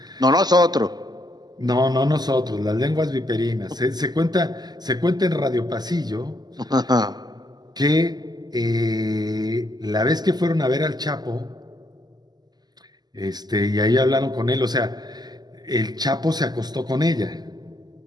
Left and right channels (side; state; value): left; late; 0.20 ms